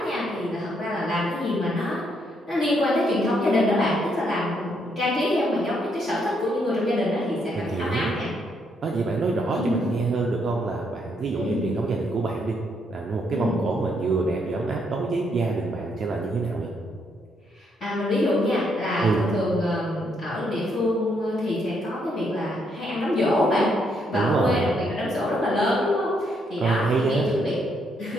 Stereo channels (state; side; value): normal; both; correlation 0.74